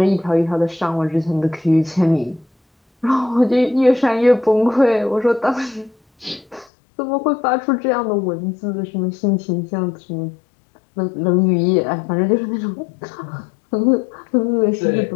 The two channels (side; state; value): right; drops out; at 6.7 s